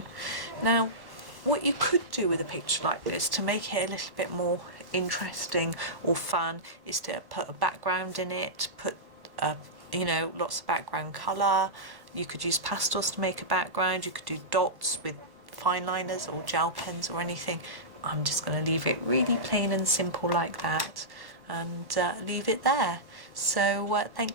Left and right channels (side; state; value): left; late; 1.1 ms